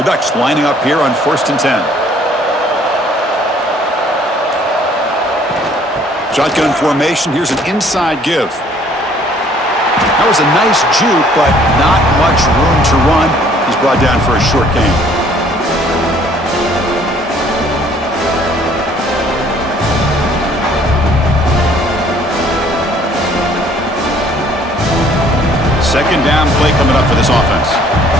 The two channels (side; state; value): both; normal; correlation 0.59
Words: Ducks lining up here on 1st and 10. Shotgun formation. Here's an inside give. That was a nice juke, but not much room to run. He's brought down for a short gain. Second down play coming up for this offense.